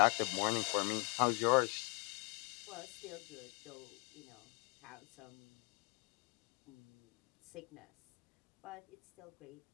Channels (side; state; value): right; quieter; 32.5 dB